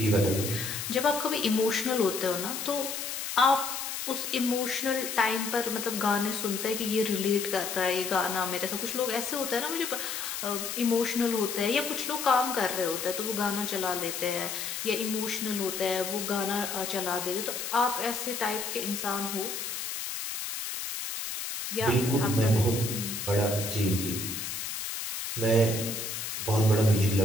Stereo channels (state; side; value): noise; left; hiss, 5 dB below the sound